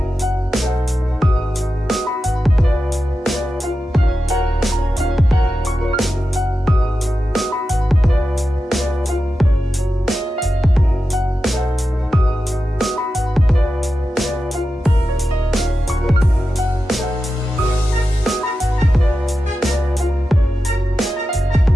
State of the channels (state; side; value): normal; both; correlation 0.91